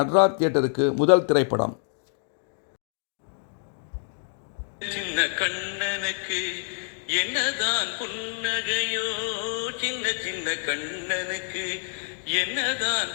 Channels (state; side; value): silent; right; digital silence